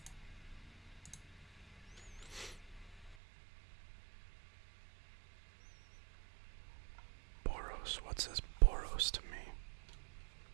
Boros. What says Boros to me?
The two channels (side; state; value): left; drops out; at 3.2 s